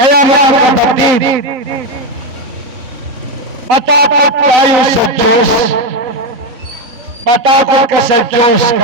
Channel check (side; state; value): left; late; 3.9 ms